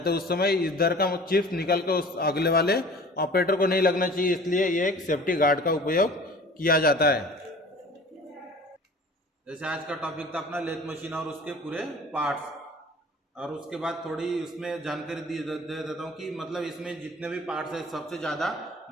हैं, उस समय इधर का चिप्स निकल कर उस अगले वाले ऑपरेटर को नहीं लगना चाहिए, इसलिए ये एक सेफ्टी गार्ड का उपयोग किया जाता है। जैसे आज का टॉपिक था अपना लेथ मशीन और उसके पूरे पार्ट्स, और उसके बाद थोड़ी उसमें जानकारी दे देता हूँ कि मतलब इसमें जितने भी पार्ट्स है सबसे ज़्यादा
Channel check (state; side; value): normal; both; correlation 0.45